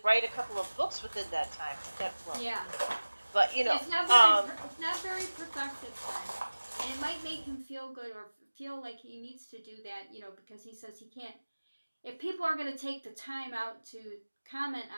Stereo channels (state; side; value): inverted; both; correlation -1.00